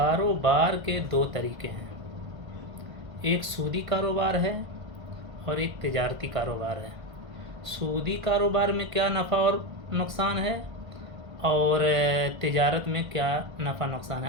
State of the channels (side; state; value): left; late; 1.5 ms